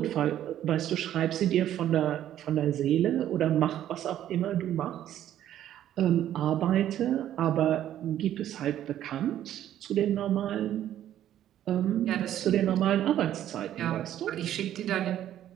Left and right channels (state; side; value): quieter; left; 11.6 dB